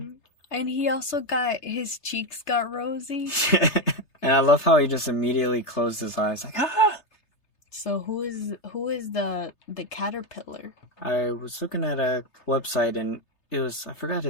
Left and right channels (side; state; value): right; late; 3.3 ms